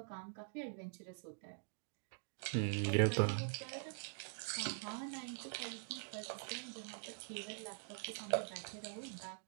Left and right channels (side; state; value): left; silent; digital silence